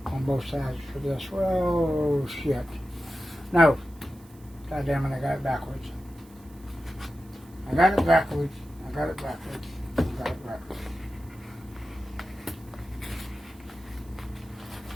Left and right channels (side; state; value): right; noise; hiss, 27 dB below the sound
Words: on both sides for this. Well, shit. No. God damn it, I got it backwards. I got it backwards. I got it backwards. I got it backwards.